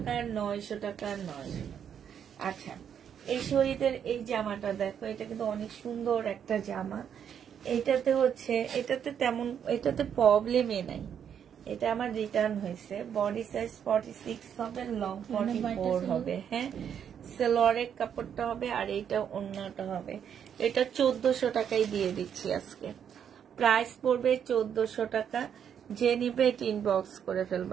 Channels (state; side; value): quieter; left; 8.4 dB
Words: 900 টাকা, 900 টাকা। আচ্ছা, এই শরীরের এই জামাটা দেখো, এটা কিন্তু অনেক সুন্দর একটা জামা। এটাতে হচ্ছে এটাতে প্রবলেমই নাই। এটা আমার রিটার্ন হয়েছে। বডি সাইজ 46 হবে, লং 44 হবে। হ্যাঁ, সেলোয়ারের কাপড়টা হবে, আর এইটা অন্যটা হবে। এটা 1400 টাকায় দিয়ে দিচ্ছি আজকে। প্রাইস পড়বে 1400 টাকা। যে নিবে এটা ইনবক্স করে